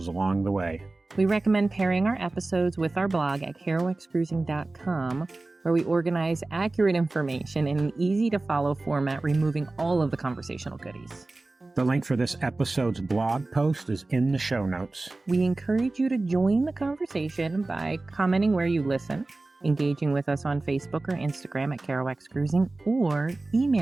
along the way. We recommend pairing our episodes with our blog at kerouacscruising.com, where we organize accurate information in an easy-to-follow format, removing all of the conversational goodies. The link for this episode's blog post is in the show notes. We encourage you to join the conversation by commenting where you listen, engaging with us on Facebook or Instagram at Kerouacs Cruising, or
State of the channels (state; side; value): quieter; left; 3.1 dB